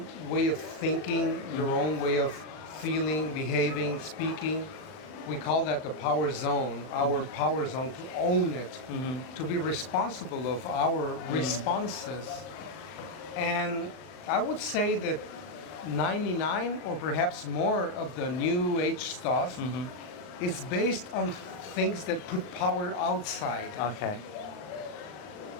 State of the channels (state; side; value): late; right; 39 ms